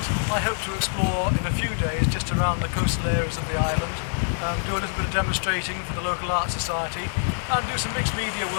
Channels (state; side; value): silent; right; digital silence